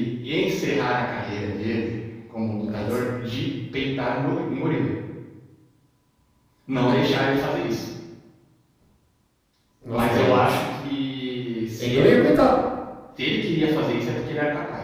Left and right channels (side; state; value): both; identical; correlation 1.00